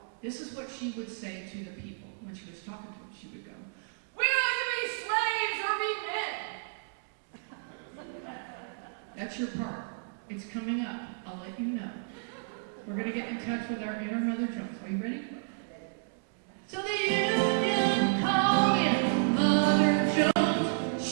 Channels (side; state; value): left; silent; digital silence